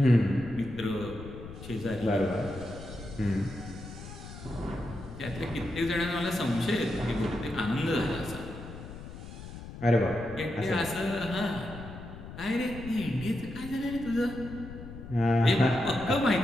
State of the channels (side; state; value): left; noise; rumble, 12 dB below the sound